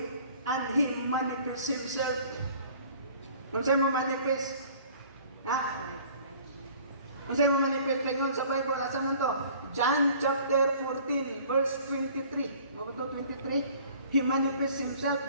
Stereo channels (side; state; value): both; inverted; correlation -0.51